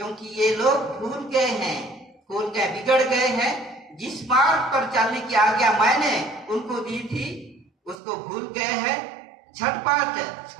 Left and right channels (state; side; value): drops out; left; at 8.0 s